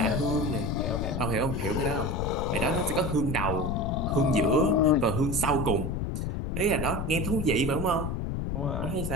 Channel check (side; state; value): left; noise; rumble, 2 dB below the sound